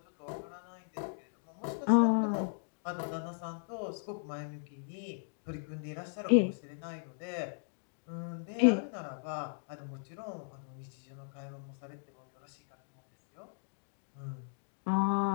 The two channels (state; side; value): silent; right; digital silence